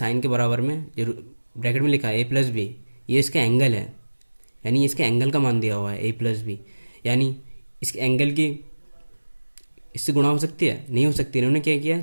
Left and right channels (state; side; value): inverted; both; correlation -1.00